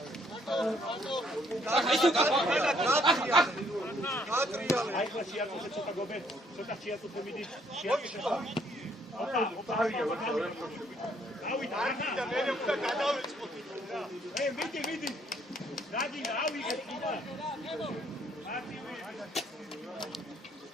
აი ხო შეაწუხე ცოტა გობე ცოტა შეაწუხე მიდი შეაწუხე ოპა დავით და მე უნდა გადავიწყოთ მიდი რადი ავიღე კიდე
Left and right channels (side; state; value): both; normal; correlation 0.67